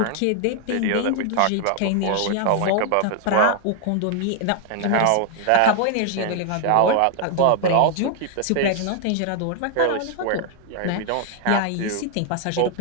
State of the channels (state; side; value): different; both; correlation 0.00